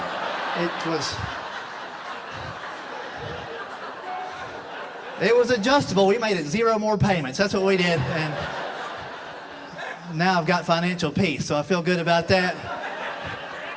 It was adjustable. We made it 0 more payments. That's what we did. And now I've got financial peace, so I feel good about that.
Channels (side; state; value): both; identical; correlation 1.00